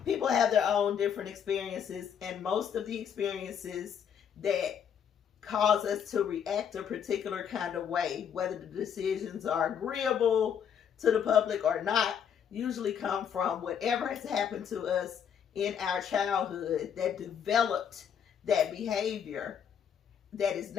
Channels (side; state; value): right; quieter; 8.1 dB